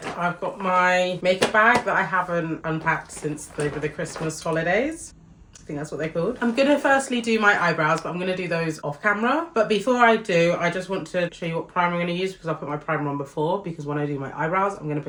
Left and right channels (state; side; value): identical; both; correlation 1.00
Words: I've got my makeup bag that I haven't unpacked since over the Christmas holidays. I think that's what they're called. I'm gonna firstly do my eyebrows, but I'm gonna do those off camera. But before I do, I just want to show you what primer I'm gonna use because I put my primer on before, because when I do my eyebrows, I'm gonna